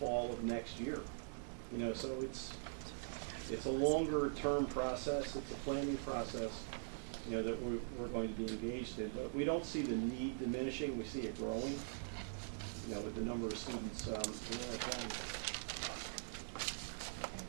of next year. So it's a longer term process. It's a planning process, that we're going to be engaged in. But we don't see the need diminishing. We see it growing, with the number of students in our county.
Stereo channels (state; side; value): silent; left; digital silence